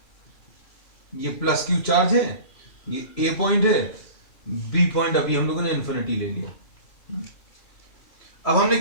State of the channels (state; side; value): late; right; 3.0 ms